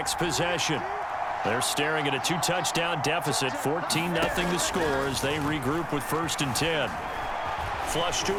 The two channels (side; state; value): both; identical; correlation 1.00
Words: possession. They're staring at a 2-touchdown deficit, 14-0 the score as they regroup with 1st and 10. Flush to